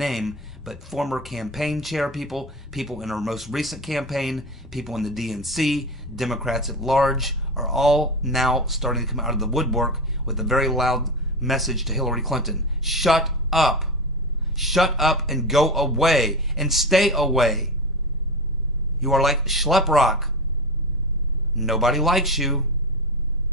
but former campaign chair people, people in her most recent campaign, people in the DNC, Democrats at large, are all now starting to come out of the woodwork with a very loud message to Hillary Clinton. Shut up. Shut up and go away and stay away. You are like Schleprock. Nobody likes you.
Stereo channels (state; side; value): normal; both; correlation 0.22